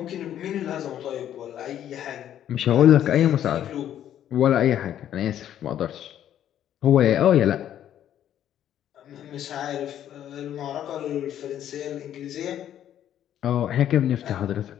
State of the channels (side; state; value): right; quieter; 10.8 dB